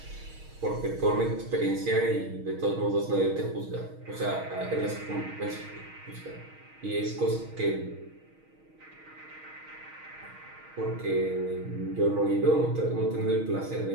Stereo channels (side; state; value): left; late; 6.4 ms